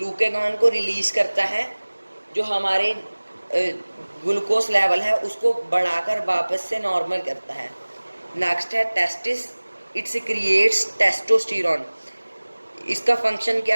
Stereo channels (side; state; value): both; inverted; correlation -1.00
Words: को रिलीज़ करता है, जो हमारे ग्लूकोज लेवल है उसको बढ़ाकर वापस से नॉर्मल करता है। नेक्स्ट है टेस्टिस। It secretes testosterone. इसका फंक्शन